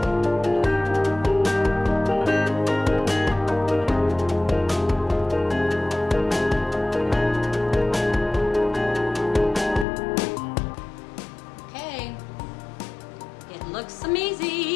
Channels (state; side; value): drops out; right; at 9.9 s